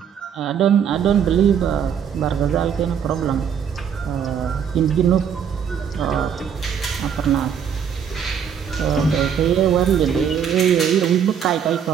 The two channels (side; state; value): left; quieter; 7.9 dB